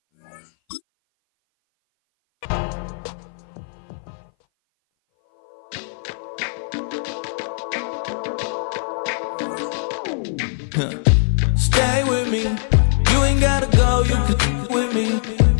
Stay with me. You ain't gotta go. You can with me.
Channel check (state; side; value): silent; right; 58 dB below the other